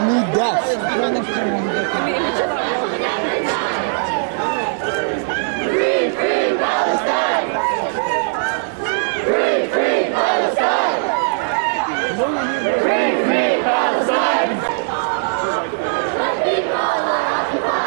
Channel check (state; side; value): silent; left; digital silence